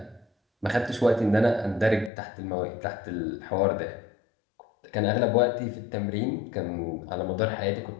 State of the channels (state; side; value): drops out; right; at 2.1 s